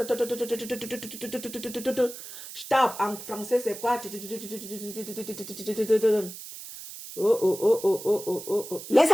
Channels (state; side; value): noise; right; hiss, 12 dB below the sound